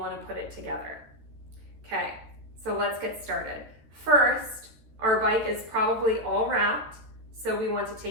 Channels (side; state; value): left; late; 14 ms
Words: to put it together. Okay, so let's get started. First, our bike is probably all wrapped, so we want to